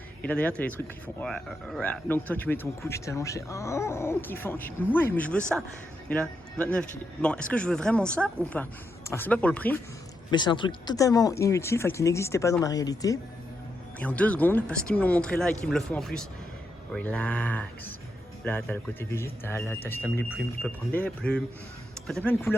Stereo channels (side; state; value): both; normal; correlation 0.83